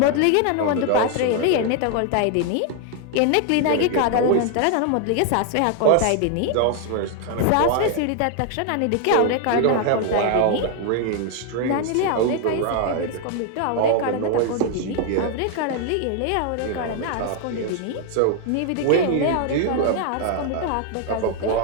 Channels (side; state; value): both; different; correlation 0.00